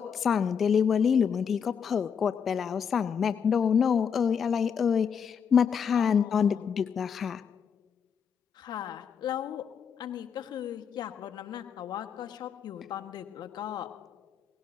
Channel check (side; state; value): right; quieter; 7.0 dB